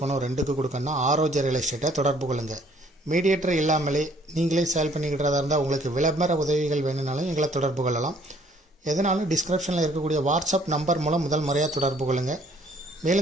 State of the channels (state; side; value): normal; both; correlation 0.61